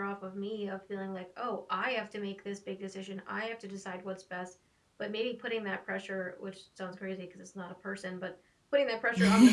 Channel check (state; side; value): identical; both; correlation 1.00